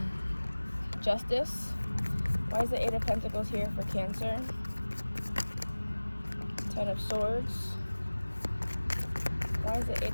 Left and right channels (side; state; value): both; inverted; correlation -1.00